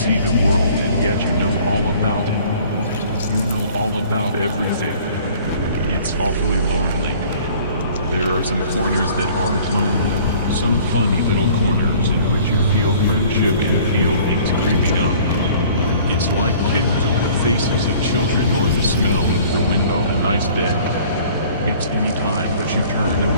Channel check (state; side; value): inverted; both; correlation -0.51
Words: the world, and yet you know all about it. You know all about everything. It's awfully lonely. There are some corners that aren't lonely, some funny little corners in which you feel friendship and feel things creeping up. It's like kittens or the faces of children or the smell of the wind on a nice day. It's any time that you turn